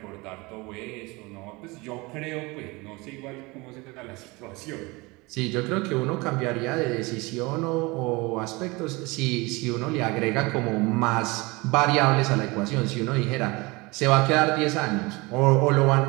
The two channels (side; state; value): left; quieter; 24.5 dB